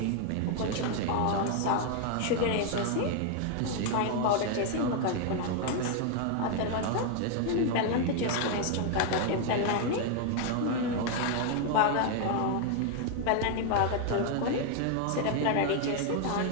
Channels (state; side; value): different; both; correlation 0.00